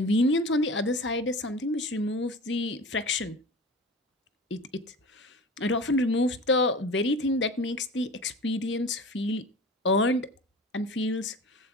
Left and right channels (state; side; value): normal; both; correlation 0.36